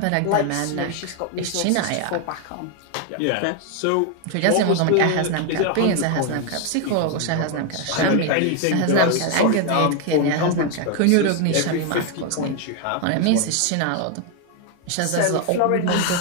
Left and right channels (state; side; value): different; both; correlation 0.01